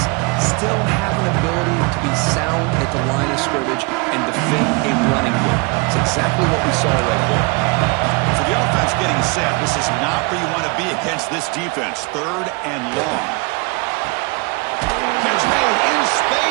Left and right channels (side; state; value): left; quieter; 29.1 dB